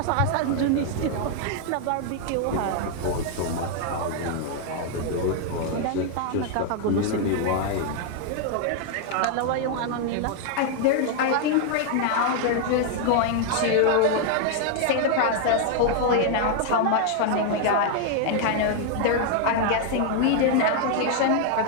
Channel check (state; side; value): different; both; correlation 0.00